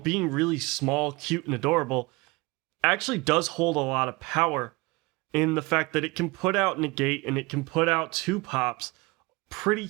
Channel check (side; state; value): left; quieter; 24.4 dB